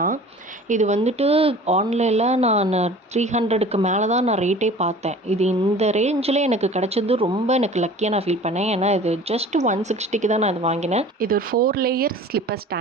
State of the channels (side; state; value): both; normal; correlation 0.44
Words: தான். இது வந்துட்டு ஆன்லைனில் நான் 300க்கு மேலே தான் நான் ரேட்டே பார்த்தேன். இது இந்த ரேஞ்சில் எனக்கு கிடச்சது ரொம்ப எனக்கு லக்கியாக நான் ஃபீல் பண்ணேன். ஏன்னா இது ஜஸ்ட் 160க்கு தான் நான் இது வாங்கினேன். இது ஒரு 4 லேயர் ஸ்லிப்பர்